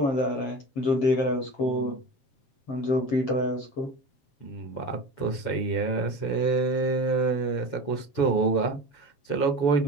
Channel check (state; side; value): late; right; 7.0 ms